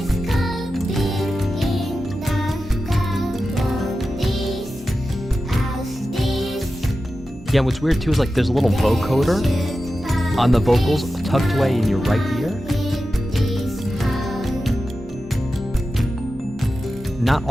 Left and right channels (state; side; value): normal; both; correlation 0.92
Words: Yeah, what's weird too is like there's a little vocoder on the vocals tucked away in your right ear. Not